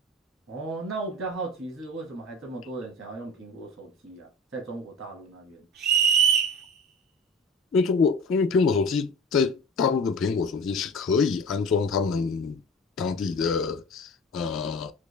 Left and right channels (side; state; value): both; normal; correlation 0.37